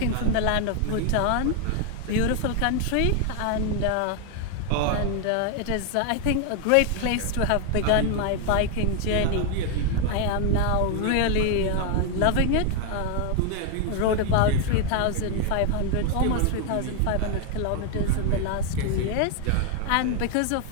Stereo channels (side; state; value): both; different; correlation 0.01